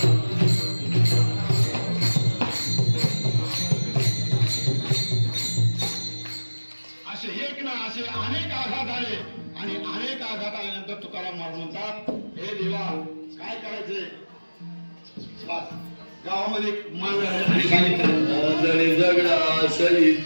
असे एक ना असे अनेक आघात आले आणि अनेक आघात आल्यानंतर तुकाराम महाराज म्हणतात हे देवा काय करायचे. गावामध्ये मान सांगितलं जगडा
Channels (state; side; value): inverted; both; correlation -1.00